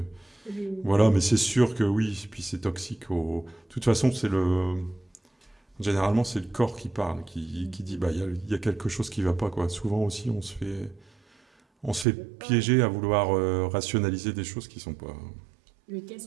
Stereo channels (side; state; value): left; drops out; at 12.1 s